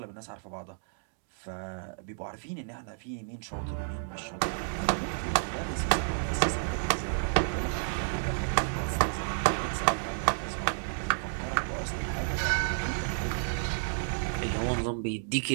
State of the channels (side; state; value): left; silent; digital silence